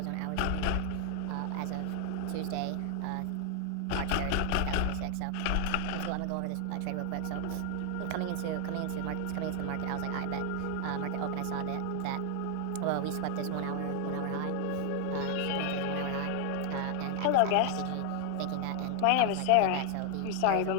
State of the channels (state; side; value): different; both; correlation 0.01